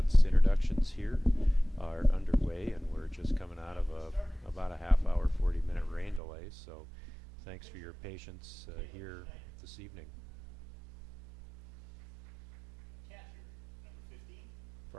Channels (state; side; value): drops out; left; at 6.2 s